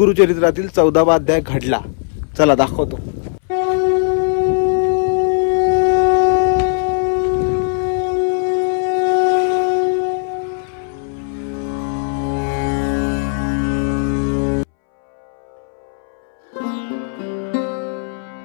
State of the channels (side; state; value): right; silent; 65 dB below the other